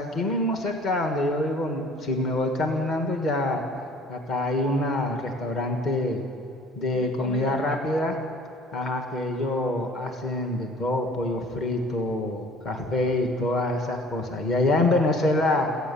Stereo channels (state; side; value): normal; both; correlation 0.51